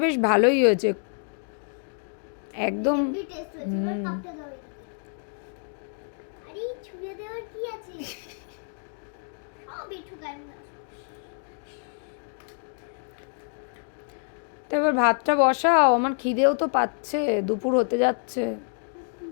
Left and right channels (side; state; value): right; silent; 56 dB below the other